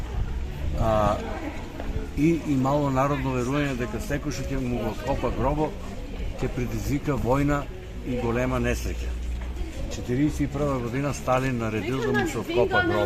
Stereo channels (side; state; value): both; identical; correlation 1.00